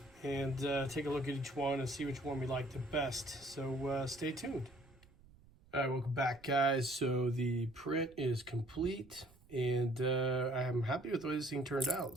and take a look at each one and see which one we like the best. So stay tuned. All right, welcome back, guys. So the print is complete, and I'm happy with the way this thing turned out.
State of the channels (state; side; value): noise; right; rumble, 26 dB below the sound